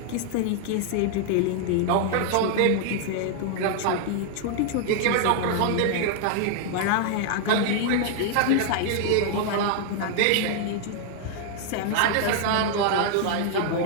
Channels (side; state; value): both; different; correlation 0.00